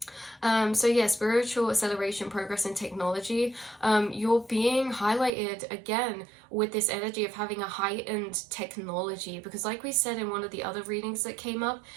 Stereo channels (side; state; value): left; drops out; at 5.3 s